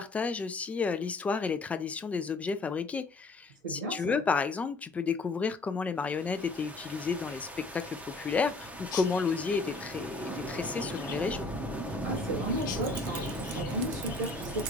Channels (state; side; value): quieter; right; 3.2 dB